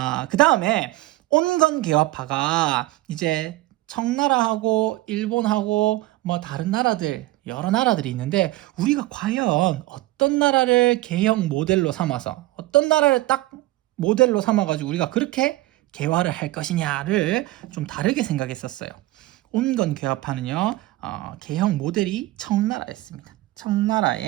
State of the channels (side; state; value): left; quieter; 18.0 dB